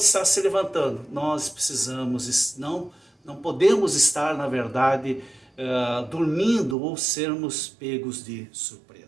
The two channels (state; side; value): drops out; left; at 6.8 s